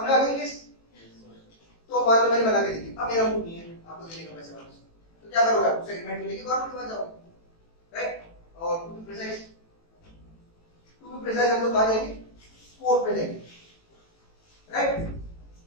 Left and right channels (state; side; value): late; right; 18 ms